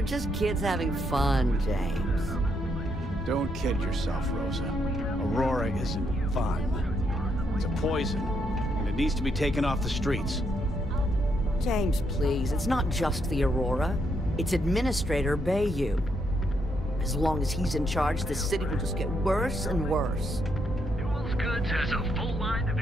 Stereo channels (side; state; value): both; normal; correlation 0.77